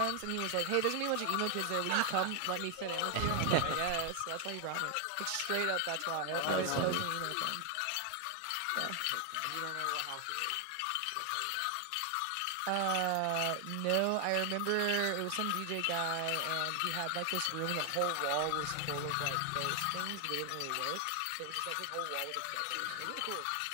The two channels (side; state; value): both; different; correlation 0.00